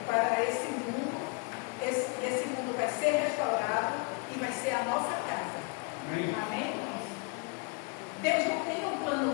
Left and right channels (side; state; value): right; quieter; 33.6 dB